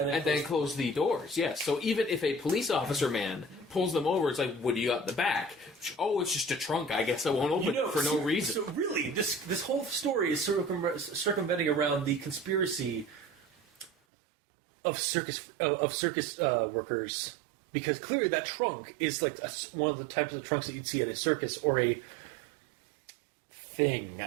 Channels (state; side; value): drops out; left; at 13.9 s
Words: then close the doors, yes. So even if a police officer man pulls them over, it's like, what do you got in the back? Oh, it's just a trunk. I guess I won't open it for no reason. So really, this whole story is circumventing around the conspiracy of circus workers, because clearly that trunk is like one of the types of trunks that you'd see at a circus or a thing.